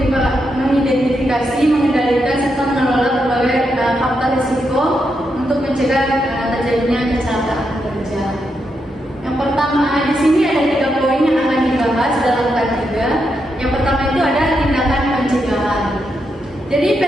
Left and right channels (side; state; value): both; normal; correlation 0.83